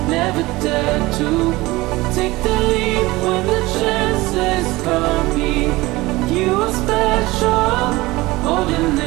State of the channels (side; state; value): left; quieter; 20.4 dB